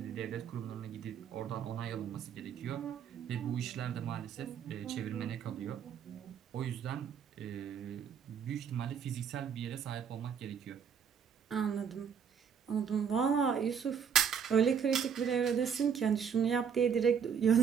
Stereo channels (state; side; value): quieter; left; 7.3 dB